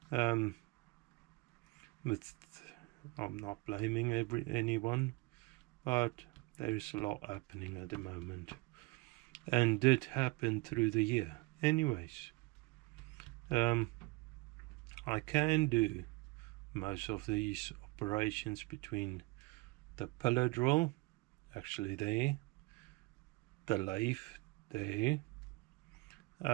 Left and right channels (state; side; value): quieter; left; 23.3 dB